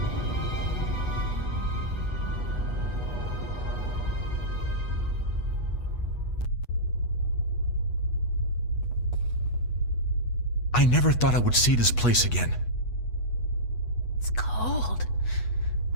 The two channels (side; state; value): right; late; 8.2 ms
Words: I never thought I would see this place again. It's cold.